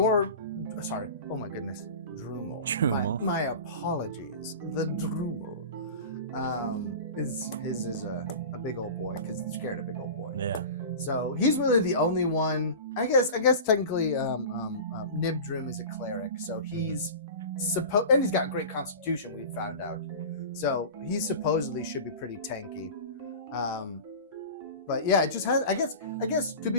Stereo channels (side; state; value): both; inverted; correlation -0.33